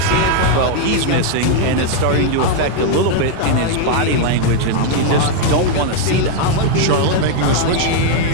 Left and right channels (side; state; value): both; different; correlation 0.00